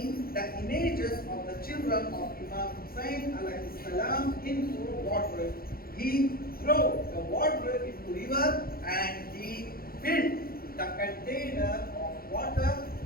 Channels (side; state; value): right; late; 0.43 ms